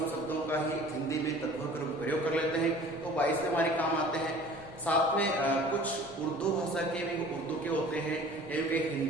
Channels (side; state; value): left; noise; rumble, 22 dB below the sound